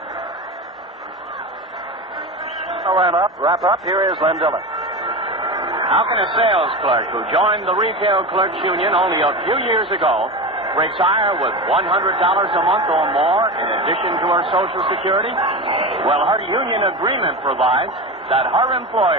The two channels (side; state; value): both; normal; correlation 0.24